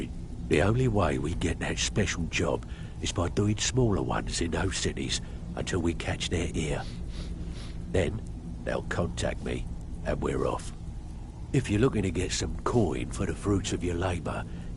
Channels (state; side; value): identical; both; correlation 1.00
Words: The only way we get that special job is by doing smaller ones in those cities until we catch their ear. Then, they'll contact me, and we're off. If you're looking to get some coin for the fruits of your labour,